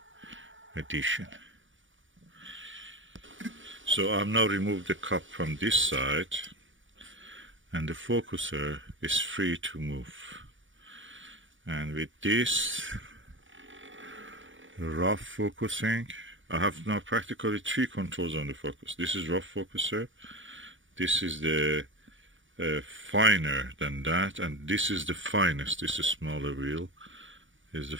edition. So I've now removed the cup from this side, and the focuser is free to move. And with this rough focusing, I have now practically 3 controls on the focus. This is rough focuser, this is the finer than that, and this is the finest. This is smaller wheel, is the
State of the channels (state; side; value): late; left; 0.56 ms